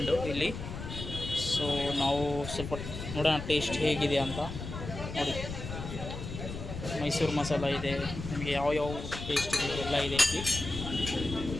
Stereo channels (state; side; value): noise; left; rumble, 8 dB below the sound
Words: ಇಲ್ಲಿ. ಸೊ ನಾವು ಸ್ವಲ್ಪ ನೋಡೋಣ ಟೇಸ್ಟ್ ಹೇಗಿದೆ ಅಂತ. ನೋಡಿ, ಮೈಸೂರು ಮಸಾಲ ಇದೆ, ನಿಮಗೆ ಯಾವ ಟೇಸ್ಟ್ ಇದೆ ಎಲ್ಲ ಇದೆ ಇಲ್ಲಿ.